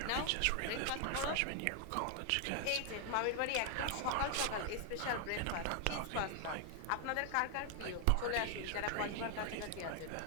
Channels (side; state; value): both; different; correlation 0.00